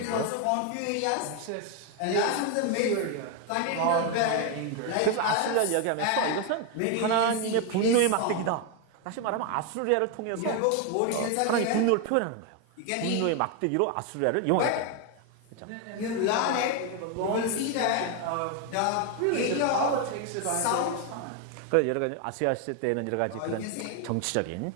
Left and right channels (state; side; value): different; both; correlation 0.01